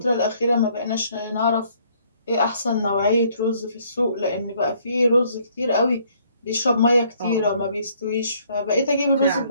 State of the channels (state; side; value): inverted; both; correlation -0.64